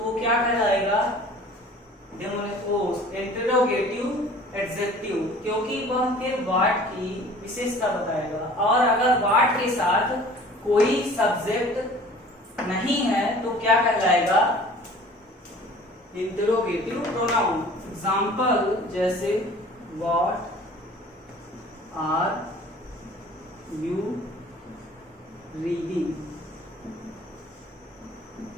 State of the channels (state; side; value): normal; both; correlation 0.47